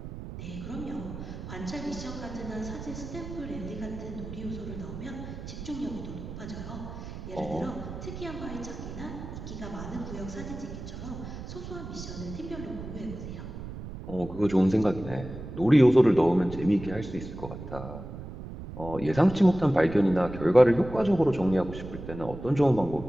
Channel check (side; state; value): right; noise; rumble, 10 dB below the sound